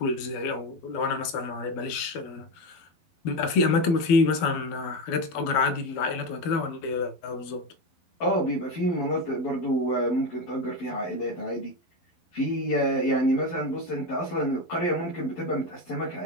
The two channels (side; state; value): right; late; 12 ms